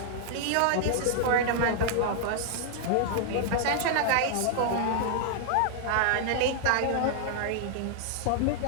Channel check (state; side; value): different; both; correlation 0.00